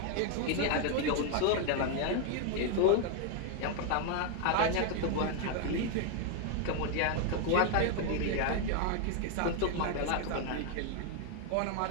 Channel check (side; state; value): both; different; correlation 0.00